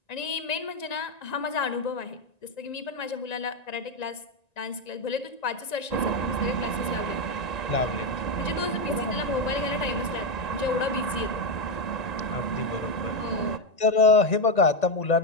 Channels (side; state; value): right; late; 1.9 ms